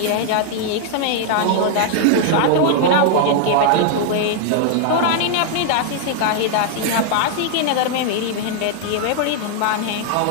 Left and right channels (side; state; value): both; different; correlation 0.00